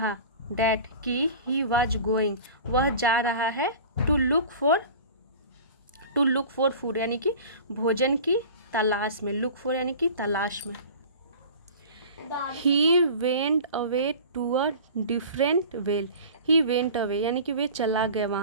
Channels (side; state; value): both; inverted; correlation -0.39